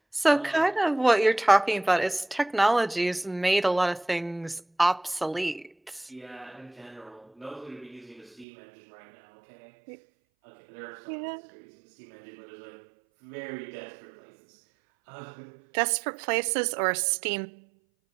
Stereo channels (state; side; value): drops out; left; at 8.5 s